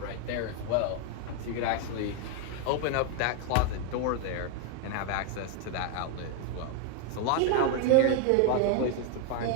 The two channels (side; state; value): both; different; correlation 0.00